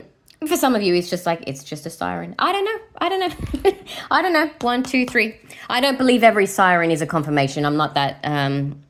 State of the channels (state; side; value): identical; both; correlation 1.00